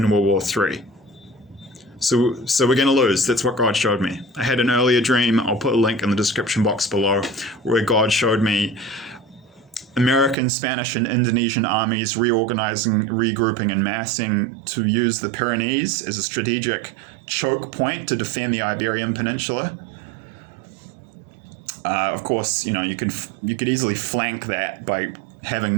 World War III. So we're going to lose. That's what God showed me. I had an earlier dream, I'll put a link in the description box below, where God showed me American, Spanish, and Indonesian armies reorganizing, regrouping, and massing to use the Pyrenees as a strategic choke point to defend the Iberian Peninsula. Of course, you could easily flank that by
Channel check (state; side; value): drops out; left; at 10.4 s